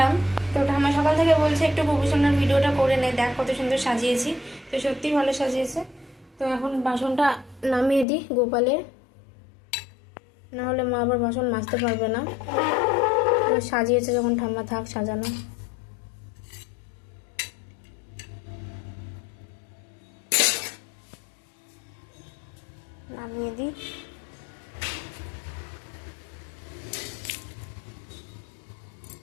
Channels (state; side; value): drops out; right; at 8.1 s